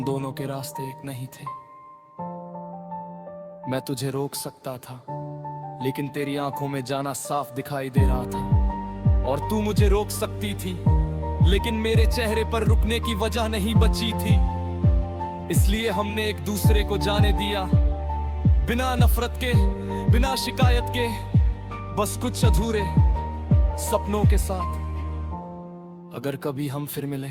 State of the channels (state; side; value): identical; both; correlation 1.00